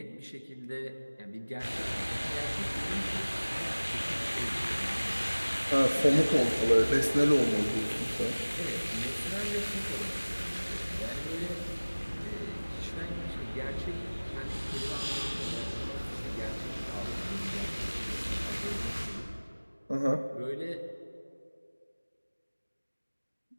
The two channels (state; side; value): inverted; both; correlation -1.00